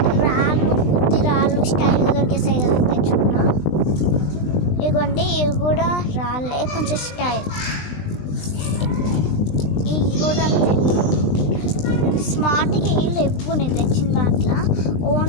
రాళ్ళు, బుద్ధి రాళ్ళు స్టైల్గా దొరికేసాయి కదా తెచ్చుకున్నా. ఇదిగోండి, ఇవి కూడా రాళ్ళే, కొంచెం స్టైల్. ఇవి కూడా స్మార్ట్గా ఇల్లు ఎప్పుడు నేను తెచ్చిన దాంట్లో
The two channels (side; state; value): right; late; 20 ms